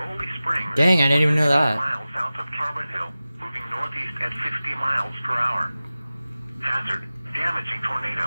Springs. Dang, I didn't even know that. Miles south of Carbon Hill, moving northeast at 50 miles per hour. Hazard, damaging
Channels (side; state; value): both; inverted; correlation -0.96